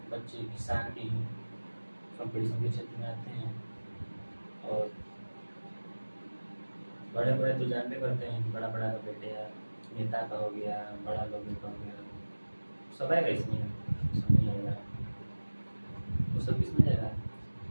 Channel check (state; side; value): inverted; both; correlation -1.00